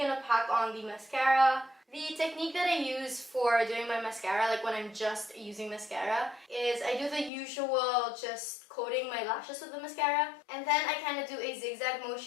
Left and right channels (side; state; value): right; drops out; at 7.3 s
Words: to pack on the mascara. The technique that I use for doing my mascara, like when I'm just using mascara, is I do the usual just coating my lashes with the mascara. And then I kind of do a zigzag